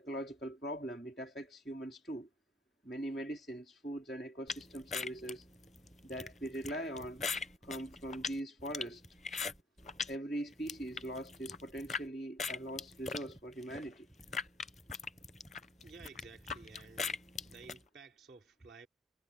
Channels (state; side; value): normal; both; correlation 0.60